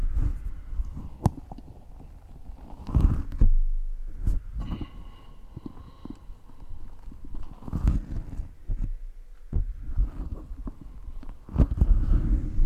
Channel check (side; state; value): both; identical; correlation 1.00